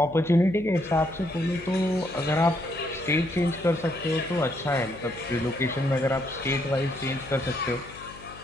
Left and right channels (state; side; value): noise; left; hum, 18 dB below the sound